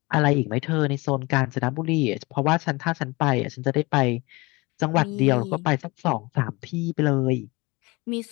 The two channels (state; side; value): quieter; right; 24.0 dB